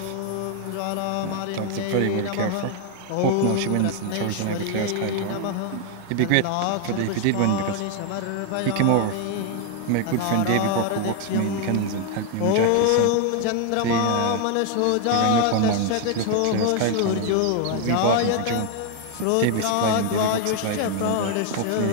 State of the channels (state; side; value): different; both; correlation 0.00